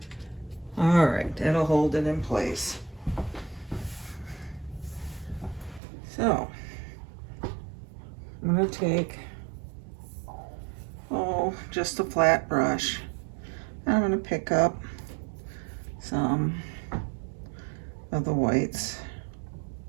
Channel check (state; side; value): drops out; left; at 5.8 s